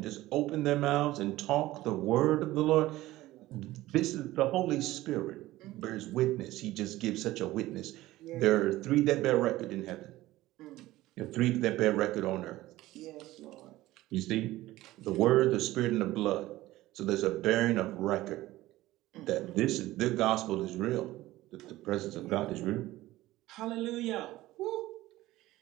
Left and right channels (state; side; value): quieter; left; 16.9 dB